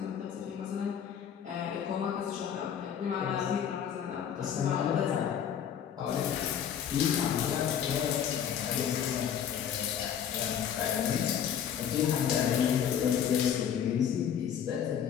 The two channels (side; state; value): right; quieter; 8.8 dB